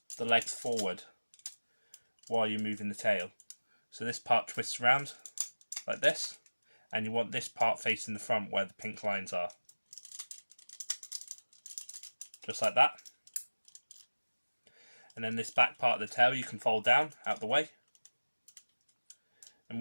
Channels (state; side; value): inverted; both; correlation -1.00